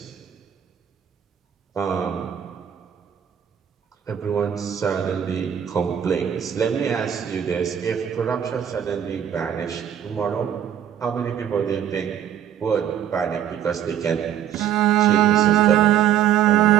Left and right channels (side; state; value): left; quieter; 9.8 dB